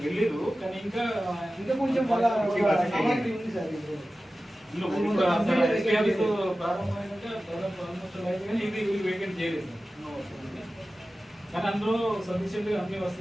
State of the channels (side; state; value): both; normal; correlation 0.95